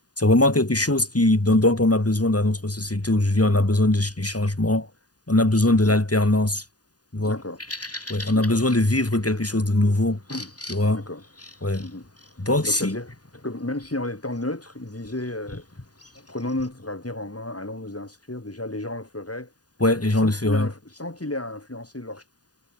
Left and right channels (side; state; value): right; late; 0.68 ms